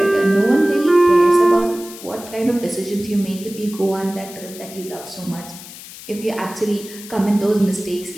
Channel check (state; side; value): noise; left; hiss, 15 dB below the sound